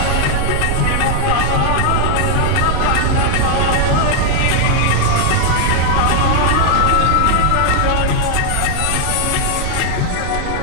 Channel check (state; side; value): different; both; correlation 0.00